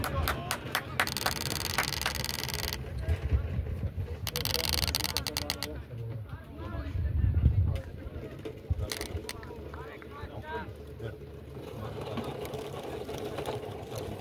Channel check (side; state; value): both; identical; correlation 1.00